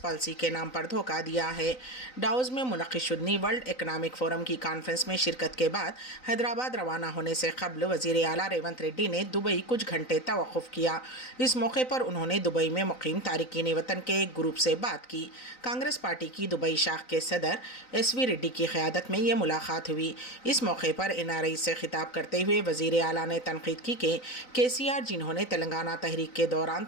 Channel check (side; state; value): right; late; 3.9 ms